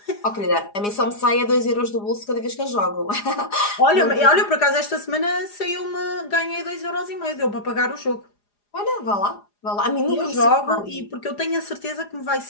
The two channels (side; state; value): right; late; 4.9 ms